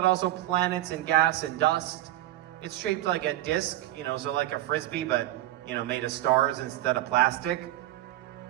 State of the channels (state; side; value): quieter; left; 15.1 dB